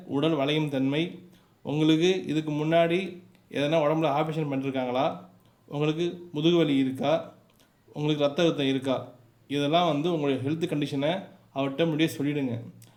உடல் வளையும் தன்மை, உங்களுக்கு இதுக்கு முன்னாடி எதனா உடம்புல ஆப்ரேஷன் பண்ணிருக்காங்களா, உங்களுக்கு முதுகு வலி இருக்கா, உங்களுக்கு ரத்த அழுத்தம் இருக்கா, இதெல்லாம் உங்களுடைய ஹெல்த் கண்டிஷனை அவர்கிட்ட முன்னாடியே சொல்லிவிடுங்க.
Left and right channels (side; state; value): both; identical; correlation 1.00